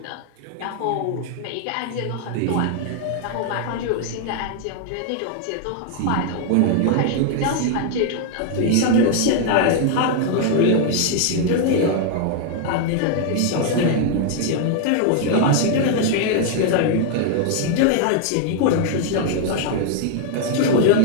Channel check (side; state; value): both; different; correlation 0.00